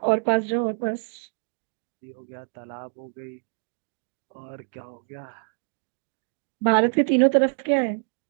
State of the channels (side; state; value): left; silent; digital silence